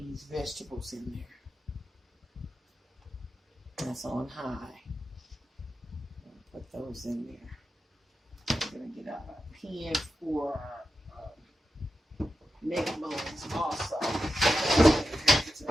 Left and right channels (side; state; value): both; normal; correlation 0.90